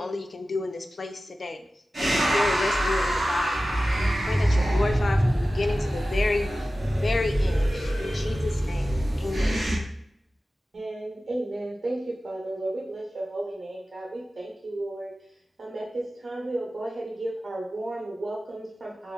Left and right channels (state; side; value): normal; both; correlation 0.95